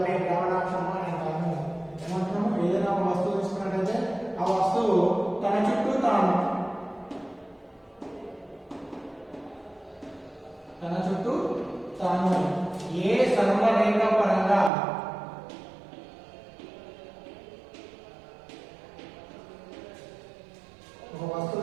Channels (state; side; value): drops out; left; at 14.7 s